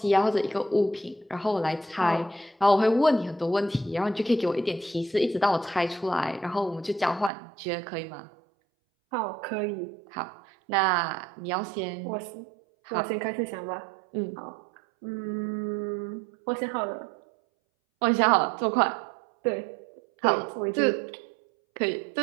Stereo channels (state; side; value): drops out; left; at 7.3 s